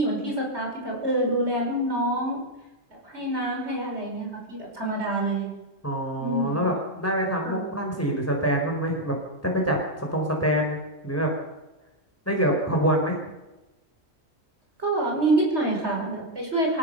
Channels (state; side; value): normal; both; correlation 0.00